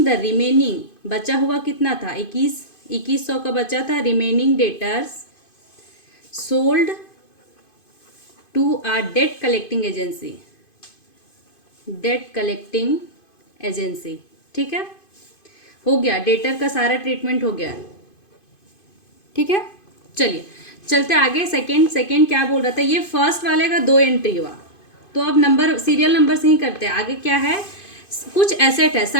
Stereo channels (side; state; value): right; late; 2.5 ms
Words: द रिमेनिंग, बचा हुआ कितना था, 2100 का बचा था, remaining debtors sold to a debt collecting agency, debt collecting agency, ठीक है, हो गया, डेटर का सारा ट्रीटमेंट हो गया, ठीक है। चलिए चलते आगे। सेकंड क्या बोल रहा था, ये फर्स्ट वाले का 2 एंट्री हुआ, तो अब नंबर सीरियल नंबर से ही करते हैं। आगे क्या है, कुछ एसेट है,